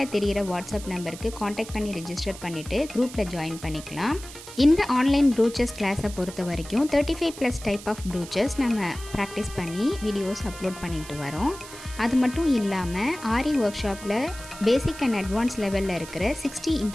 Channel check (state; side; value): noise; right; hiss, 15 dB below the sound